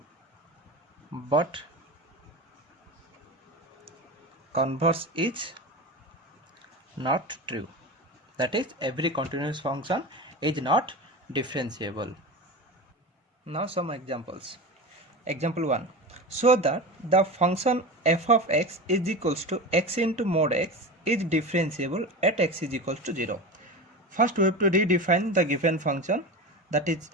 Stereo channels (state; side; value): normal; both; correlation 0.27